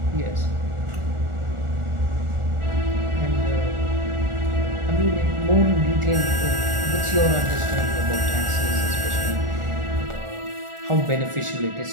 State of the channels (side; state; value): left; late; 1.4 ms